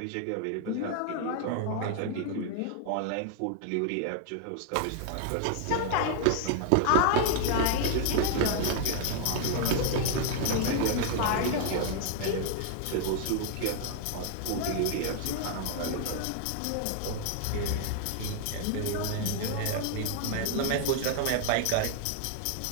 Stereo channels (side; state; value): both; different; correlation 0.00